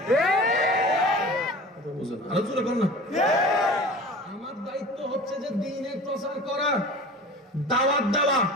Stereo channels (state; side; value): normal; both; correlation 0.39